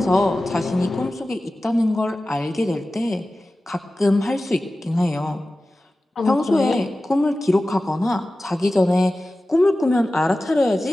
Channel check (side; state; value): both; normal; correlation 0.95